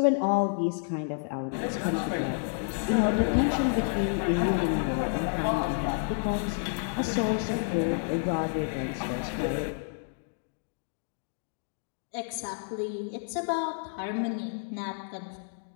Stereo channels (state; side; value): silent; right; digital silence